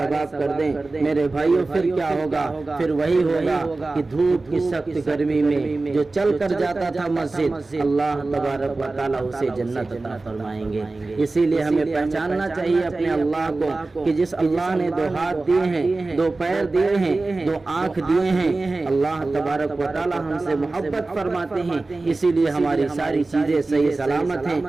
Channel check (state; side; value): quieter; left; 3.3 dB